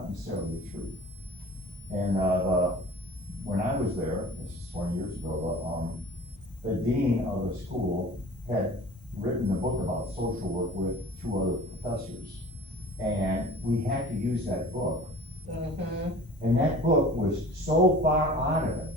necessarily true. And, when I was there, this is 20 years ago, the dean of the school had written a book about social work with 2 other professors. And we had to use that book. Mm-hmm. And that book was so far out of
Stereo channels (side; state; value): both; normal; correlation 0.43